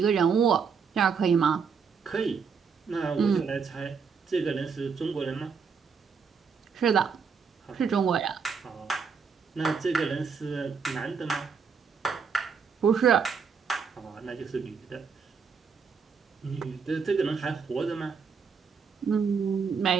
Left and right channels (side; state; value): left; quieter; 5.9 dB